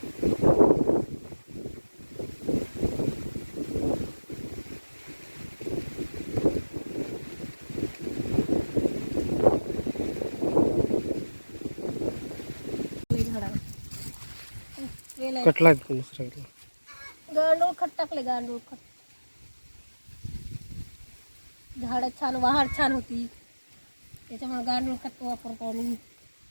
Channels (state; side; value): inverted; both; correlation -1.00